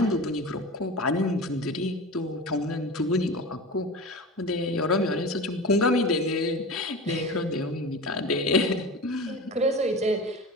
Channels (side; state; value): both; normal; correlation 0.31